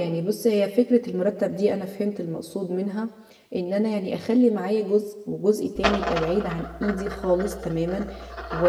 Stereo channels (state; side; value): identical; both; correlation 1.00